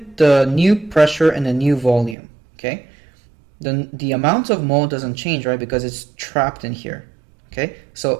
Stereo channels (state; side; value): drops out; left; at 2.1 s